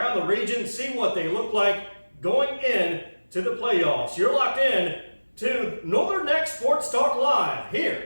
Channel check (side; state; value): both; inverted; correlation -1.00